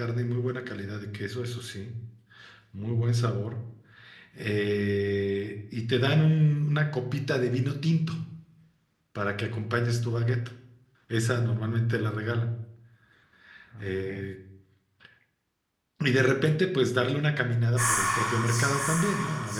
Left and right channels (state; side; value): identical; both; correlation 1.00